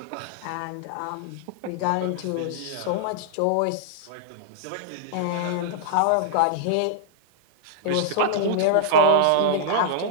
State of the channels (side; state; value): both; different; correlation -0.01